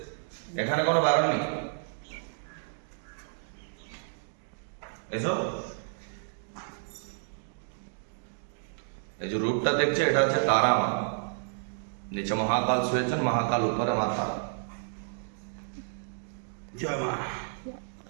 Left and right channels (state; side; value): silent; left; digital silence